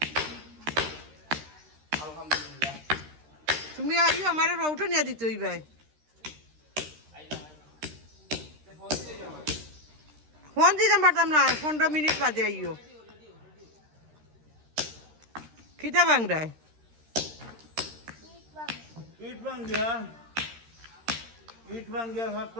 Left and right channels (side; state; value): left; late; 13 ms